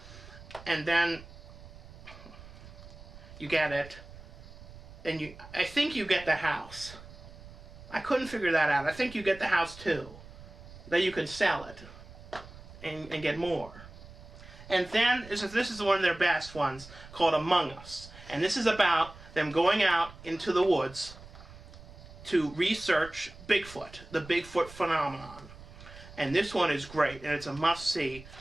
And then you get it. And I think you get the house. I couldn't figure that out. I think you get the house too. Then you can sell it and get more. And then this is one of their best ones called Among Us. And this is about them going out into the woods to research Bigfoot, the Bigfoot phenomenon. And this one is great, and it's a must-see,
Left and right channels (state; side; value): noise; right; rumble, 17 dB below the sound